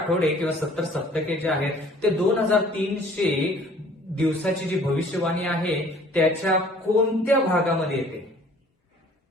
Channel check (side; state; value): both; normal; correlation 0.54